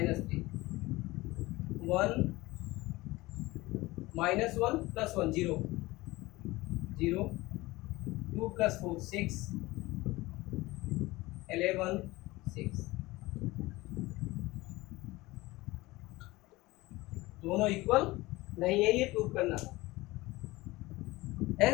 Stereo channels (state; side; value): quieter; right; 20.2 dB